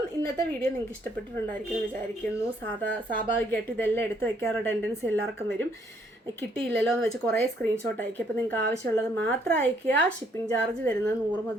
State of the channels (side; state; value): both; normal; correlation 0.68